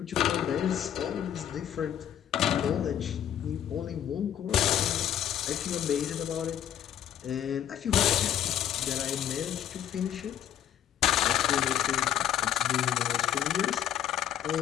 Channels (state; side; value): quieter; right; 10.5 dB